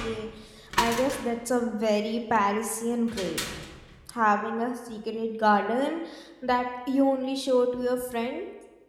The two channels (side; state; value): both; identical; correlation 1.00